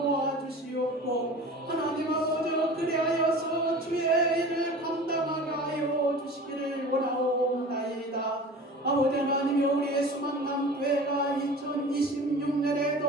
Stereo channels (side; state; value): both; normal; correlation 0.38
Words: 주시옵고 하나님 아버지 그리하여서 주의 일을 감당하게 하여 주시기를 원하옵나이다. 아버지 하나님이 우리의 수만남교회가